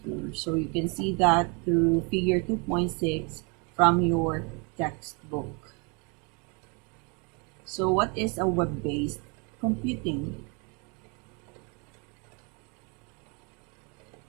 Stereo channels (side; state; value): left; quieter; 32.6 dB